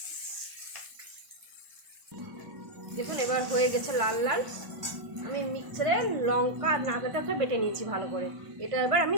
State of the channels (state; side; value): late; left; 1.5 ms